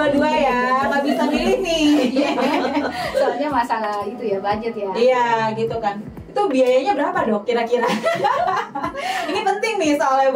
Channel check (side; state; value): both; identical; correlation 1.00